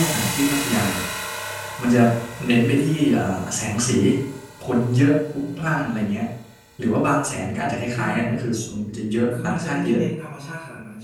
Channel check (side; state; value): both; identical; correlation 1.00